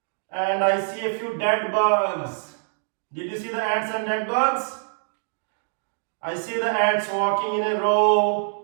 And I see a few dead bugs. Did you see the ants and dead bugs? I see the ants walking in a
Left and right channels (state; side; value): silent; left; digital silence